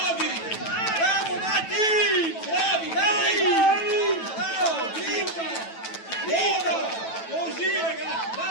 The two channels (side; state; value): right; late; 9.1 ms